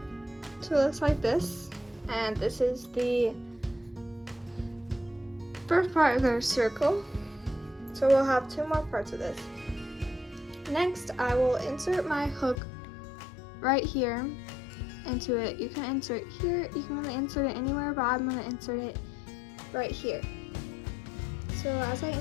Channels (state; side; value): drops out; right; at 12.6 s